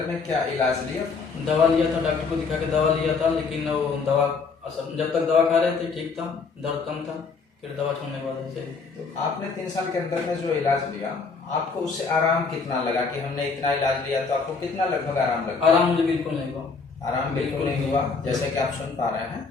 में क्या इलाज लिया? दवा लिया था, डॉक्टर को दिखा के दवा लिया था, लेकिन वो दवा असर, जब तक दवा खा रहे थे ठीक था, दर्द कम था, फिर दवा छोड़ने के बाद ऐसे। तो आपने 3 साल के अंदर में जो इलाज लिया, आपको उससे आराम कितना लगा कि हमने इतना इलाज लिया, तो आपको कितना लगभग आराम लगा? आराम मुझे बिल्कुल नहीं हुआ। आराम बिल्कुल नहीं हुआ। जैसे कि आप सुन पा रहे हैं,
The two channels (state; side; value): quieter; right; 4.8 dB